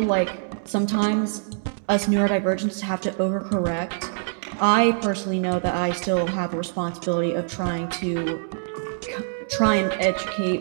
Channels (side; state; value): left; silent; digital silence